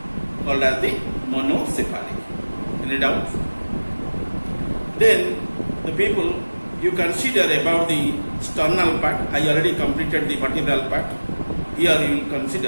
called as the monocephalic. Any doubt? Then the people you consider about the sternal part. I already completed the vertebral part. Here you will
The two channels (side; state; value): both; inverted; correlation -1.00